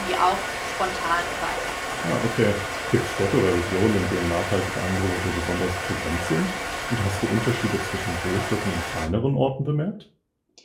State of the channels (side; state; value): both; identical; correlation 1.00